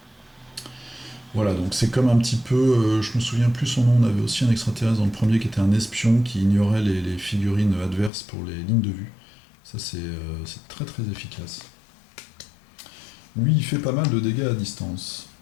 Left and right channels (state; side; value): drops out; right; at 8.1 s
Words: Voilà, donc c'est comme un petit peu, je me souviens plus son nom, on avait aussi un extraterrestre dans le premier qui était un espion qui ignorait les figurines adverses pour les lignes de vue. Ça c'est très très efficace. Lui il fait pas mal de dégâts à distance.